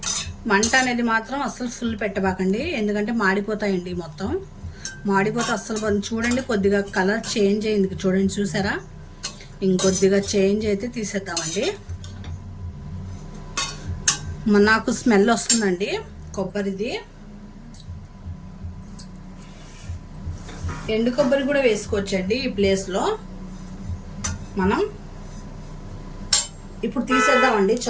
మంట అనేది మాత్రం అస్సలు ఫుల్ పెట్టబాకండి, ఎందుకంటే మాడిపోతాయండి. మొత్తం మాడిపోతే అస్సలు. చూడండి, కొద్దిగా కలర్ చేంజ్ అయింది చూడండి, చూసారా? ఇంకొద్దిగా చేంజ్ అయితే తీసేద్దామండి. నాకు స్మెల్ వస్తుందండి కొబ్బరిది. ఎండు కొబ్బరి కూడా వేసుకోవచ్చండి ఈ ప్లేస్లో. మనం ఇప్పుడు తీసేద్దామండి,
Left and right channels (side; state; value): both; identical; correlation 1.00